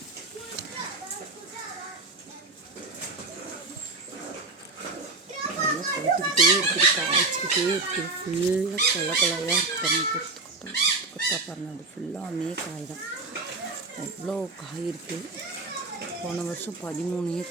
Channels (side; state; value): left; quieter; 3.4 dB